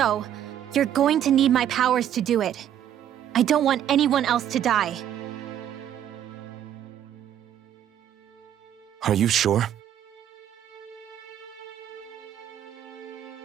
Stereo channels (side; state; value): left; quieter; 10.5 dB